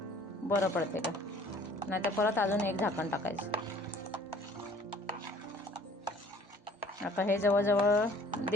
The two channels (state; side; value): normal; both; correlation 0.53